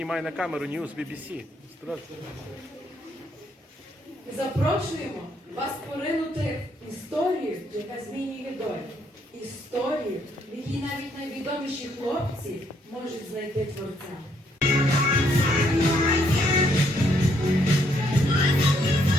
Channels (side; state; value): both; normal; correlation 0.71